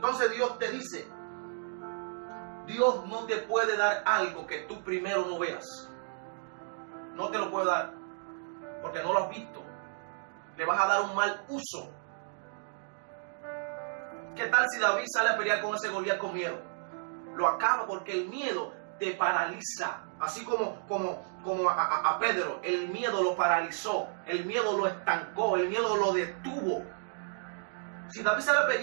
Dios te dice, Dios no te puede dar algo que tú primero no veas. No te lo puede dar, porque no lo has visto. Le vas a dar un mal uso. ¿Qué tal si David sale a pelear con ese Goliat con miedo? Lo acaba, porque el miedo te paraliza. Así como a Pedro, el miedo lo paralizó, el miedo lo estancó, el miedo lo detuvo. Si David sale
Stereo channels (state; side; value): silent; left; digital silence